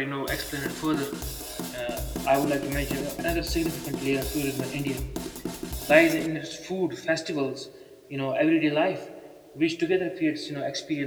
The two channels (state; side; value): identical; both; correlation 1.00